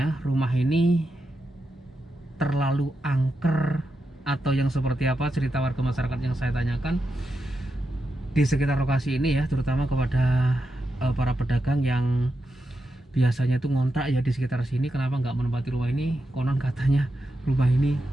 rumah ini terlalu angker atau yang seperti apa, cerita warga masyarakat yang saya tanyakan di sekitar lokasi ini ya, terutama kepada para pedagang yang biasanya itu ngontrak ya di sekitar sini, kenapa nggak menempati rumah ini. Konon katanya rumah ini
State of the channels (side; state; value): both; normal; correlation 0.87